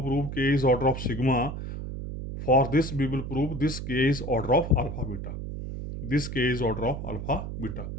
prove k is order of sigma, for this we will prove this k is order of alpha beta, this k is order of alpha beta.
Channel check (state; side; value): noise; right; hum, 6 dB below the sound